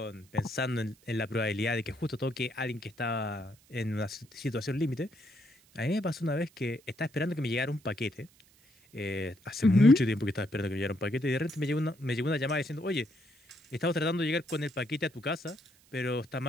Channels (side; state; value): right; noise; hiss, 30 dB below the sound